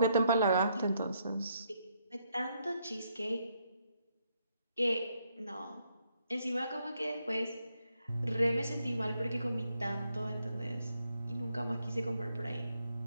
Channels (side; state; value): both; inverted; correlation -0.75